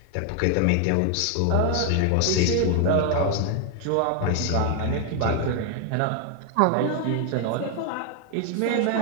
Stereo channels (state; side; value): different; both; correlation 0.00